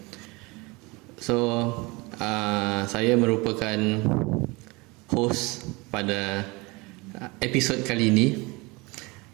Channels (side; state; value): left; quieter; 25.3 dB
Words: So, saya merupakan host pada episod kali ini.